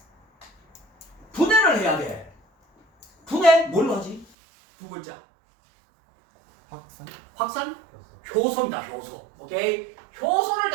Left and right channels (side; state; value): left; drops out; at 4.2 s